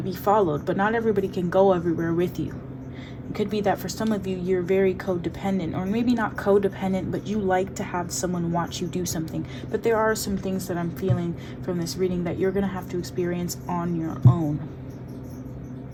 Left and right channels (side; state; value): both; identical; correlation 1.00